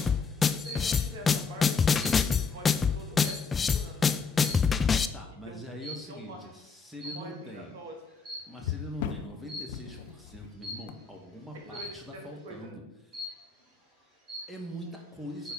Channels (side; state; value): right; quieter; 5.2 dB